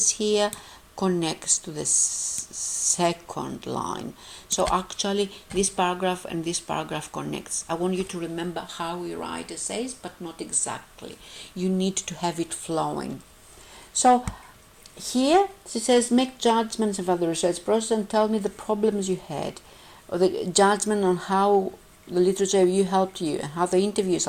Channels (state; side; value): identical; both; correlation 1.00